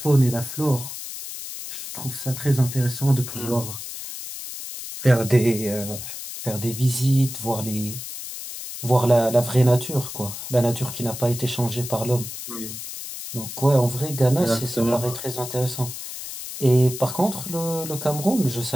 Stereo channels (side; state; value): left; noise; hiss, 9 dB below the sound